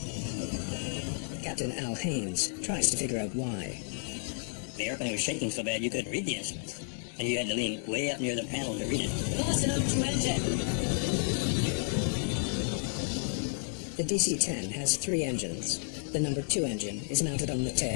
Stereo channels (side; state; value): right; silent; 57 dB below the other